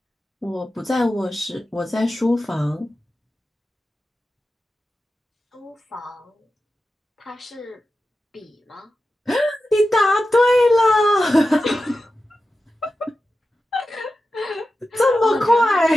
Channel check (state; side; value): normal; both; correlation 0.92